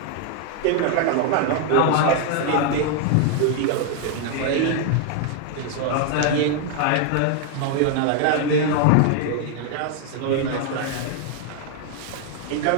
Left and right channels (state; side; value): different; both; correlation 0.00